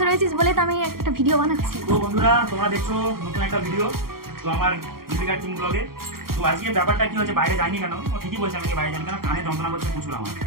রয়েছিস বলে তো আমি একটা ভিডিও বানাচ্ছি। তো বন্ধুরা তোমরা দেখছো নতুন একটা ভিডিও তো আমার দীপিকার টিম ব্লগে। তো আজকে ব্যাপারটা কি হচ্ছে, বাইরে যাইনি কেন? ও ঠিকই বলছে আমি বাইরে যাইনি কেন, কানে যন্ত্রণা করছে প্রচুর আমার,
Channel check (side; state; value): left; late; 0.93 ms